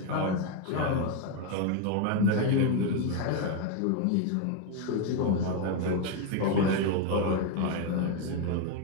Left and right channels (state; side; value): different; both; correlation 0.01